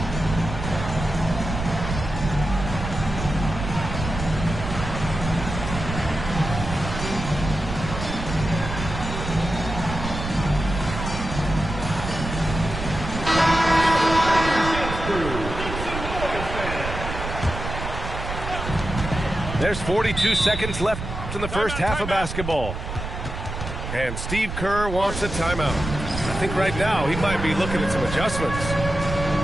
There's 42 seconds left in the first half of basketball. And Steve Kerr wants a timeout. I think right now he might be looking at some adjustments.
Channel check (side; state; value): right; noise; rumble, 6 dB below the sound